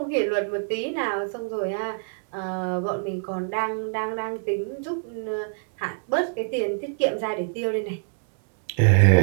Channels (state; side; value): silent; left; digital silence